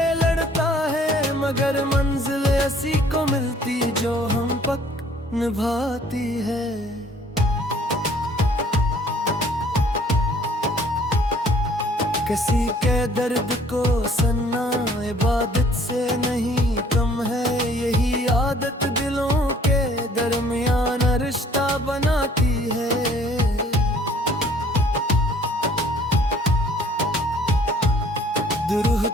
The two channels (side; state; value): both; normal; correlation 0.57